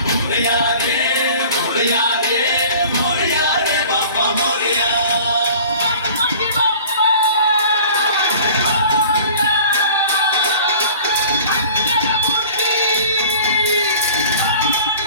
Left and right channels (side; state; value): both; inverted; correlation -0.45